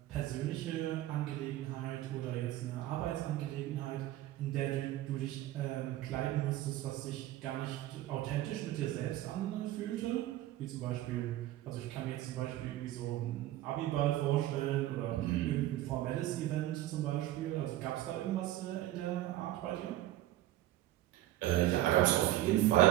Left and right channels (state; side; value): quieter; left; 14.7 dB